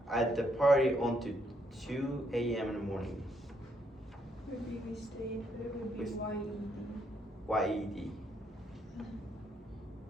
at the party until 2 a.m. in the morning. Would be we stayed, but it would be We- YED.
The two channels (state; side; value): normal; both; correlation 0.74